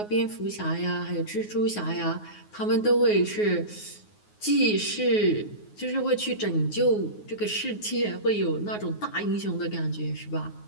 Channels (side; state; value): right; late; 9.5 ms